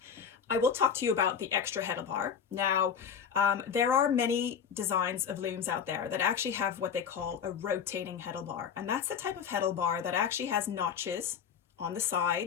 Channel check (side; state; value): right; quieter; 7.3 dB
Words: I will talk to you about the extra Heddle bar. Now, there are many designs of looms out there that actually have what they call a rotating Heddle bar. And that's the type of Heddle bar that actually has notches on the